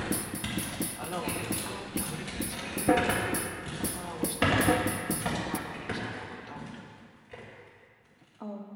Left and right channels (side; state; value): both; identical; correlation 1.00